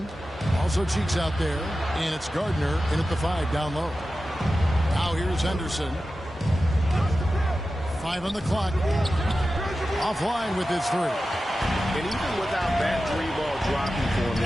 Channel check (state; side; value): normal; both; correlation 0.93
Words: Also Cheeks out there. And it's Gardner in at the 5 down low. Now here's Henderson. 5 on the clock. Offline with his 3. And even without that 3-ball dropping for him, the